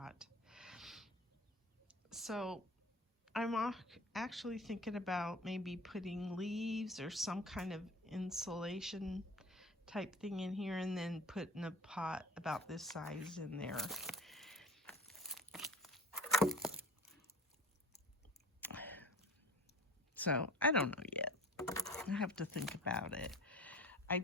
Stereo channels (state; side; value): normal; both; correlation 0.40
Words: So I'm actually thinking about maybe putting leaves or some kind of insulation type thing in here, and then putting a pot about this size in there. So I don't know yet. I have to think about it.